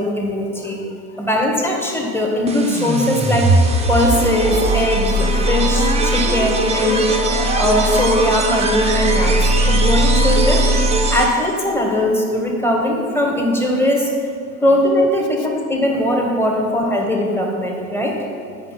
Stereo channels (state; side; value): normal; both; correlation 0.48